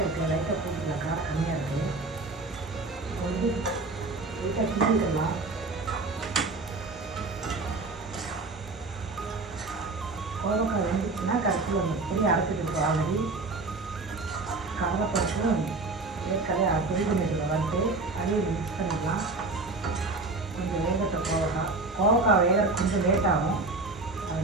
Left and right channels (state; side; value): quieter; left; 3.4 dB